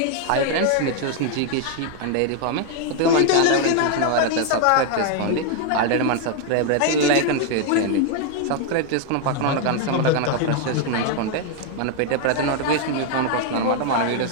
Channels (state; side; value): different; both; correlation 0.00